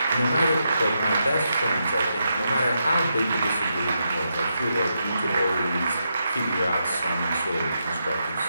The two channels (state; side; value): inverted; both; correlation -0.83